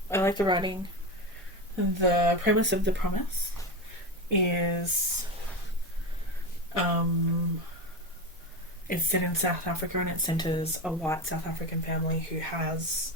like the writing. The premise of The Promise is it's set in South Africa, and it centres a white South African family who has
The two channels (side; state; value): both; normal; correlation 0.20